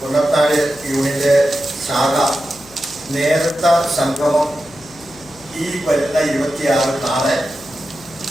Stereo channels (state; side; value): noise; left; hum, 24 dB below the sound